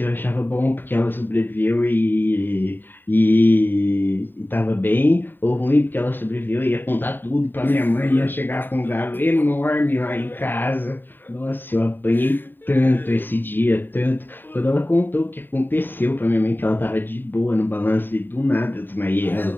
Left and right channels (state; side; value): late; right; 0.093 ms